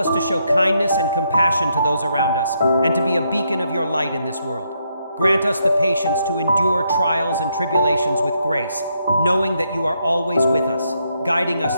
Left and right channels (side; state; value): both; inverted; correlation -0.77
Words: to show kindness and compassion to those around us, and to be a beacon of your light in this world. Grant us the patience to endure trials and tribulations with grace, knowing that you are always with us, guiding us